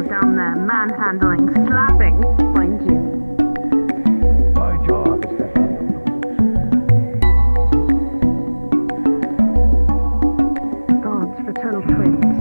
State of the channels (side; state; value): both; inverted; correlation -1.00